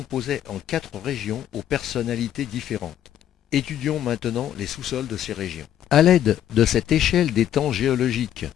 en 4 régions aux personnalités différentes. Étudions maintenant les sous-sols de ces régions. À l'aide de cette échelle des temps géologiques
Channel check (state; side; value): quieter; right; 10.9 dB